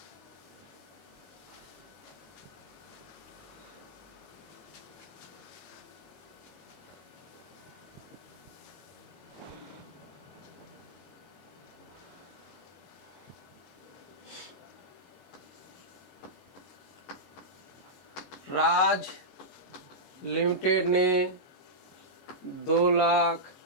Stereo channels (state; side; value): late; right; 22 ms